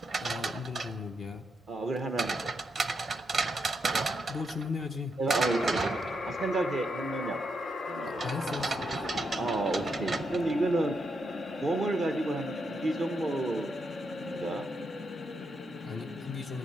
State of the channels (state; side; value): normal; both; correlation 0.81